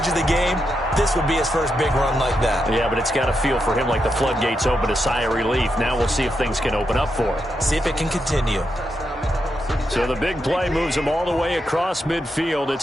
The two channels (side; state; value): both; normal; correlation 0.84